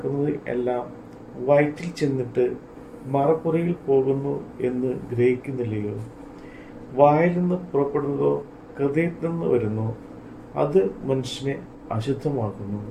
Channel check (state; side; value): identical; both; correlation 1.00